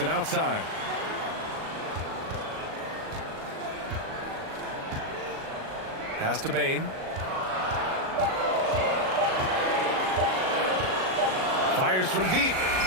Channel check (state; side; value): late; left; 38 ms